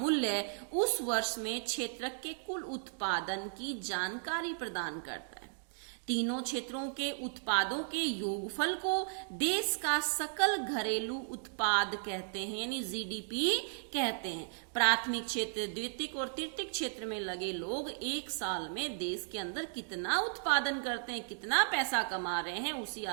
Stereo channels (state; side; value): silent; left; digital silence